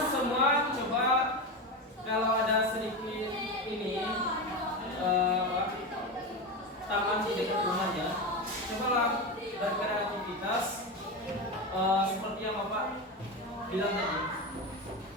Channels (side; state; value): both; normal; correlation 0.19